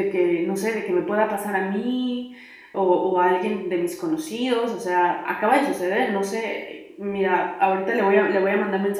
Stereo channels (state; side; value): identical; both; correlation 1.00